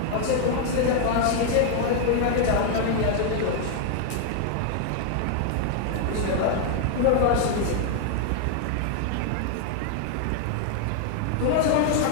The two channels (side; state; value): both; different; correlation 0.00